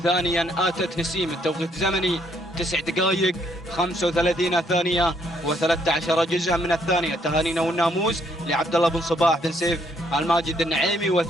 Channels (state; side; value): normal; both; correlation 0.70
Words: ثانيا آتت نسيم، التوقيت زمني 9 دقائق 35 ثانية و13 جزءا من الثانية. تهانينا والناموس لعبد الله بن صباح بن سيف الماجد النعيمي.